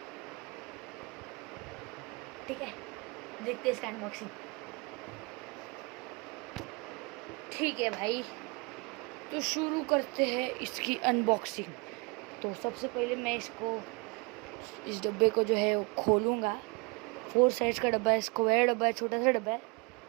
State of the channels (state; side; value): quieter; left; 29.4 dB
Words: ठीक है, देखते हैं इसका अनबॉक्सिंग। ठीक है भाई, तो शुरू करते हैं इसकी अनबॉक्सिंग। तो सबसे पहले मैं इस डब्बे को जो है वो खोलूँगा। 4 साइज का डब्बा है, स्क्वायर डब्बा है, छोटा सा डब्बा है।